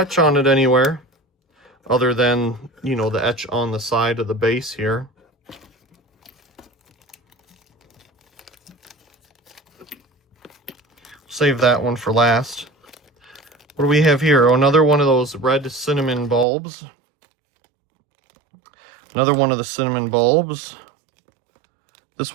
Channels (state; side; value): drops out; left; at 16.4 s